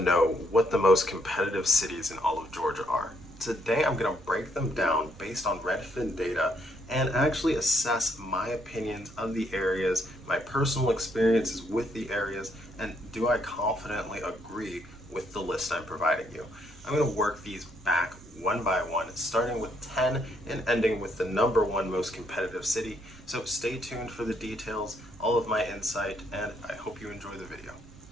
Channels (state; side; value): noise; right; rumble, 21 dB below the sound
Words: what the most competitive cities in all of Georgia are. Today I'm going to break them down based on Redfin data and actually assess my opinions of the areas, my personal experiences with the areas, and do I confidently agree with the list I'm providing you. I'm going to work these back one by one, starting with 10 and ending with the number one most competitive city. So stay tuned for the details, all of my insight, and I hope you enjoy the video.